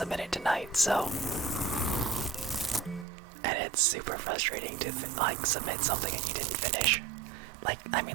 it tonight, so. And it's super frustrating to, submit something and you didn't finish.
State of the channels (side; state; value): left; drops out; at 3.1 s